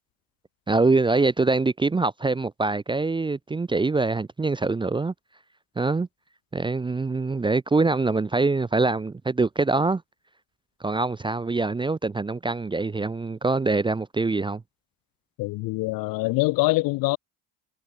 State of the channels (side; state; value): both; normal; correlation 0.60